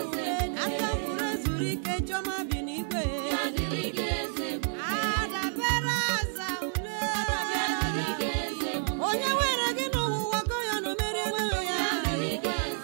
Aka mkpụrụ ezuru ike chiọma bi n'igwe. Ya dịrị gị Eze Ebube. Adabere aza ule. Ya dịrị gị Eze Ebube. Onye were gị n'ụwa gọ ya na o merie ego ya. Ya dịrị gị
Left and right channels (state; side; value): silent; left; 58 dB below the other